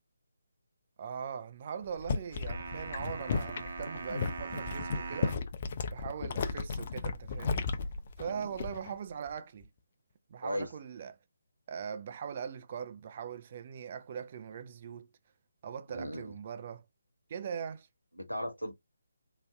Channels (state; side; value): inverted; both; correlation -0.73